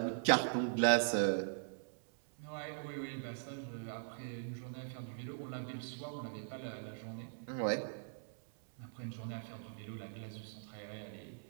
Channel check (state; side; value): silent; left; 50 dB below the other